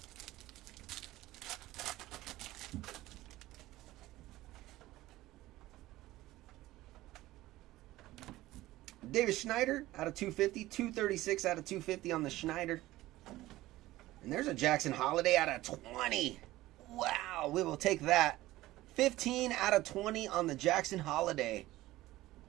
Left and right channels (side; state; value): left; quieter; 16.9 dB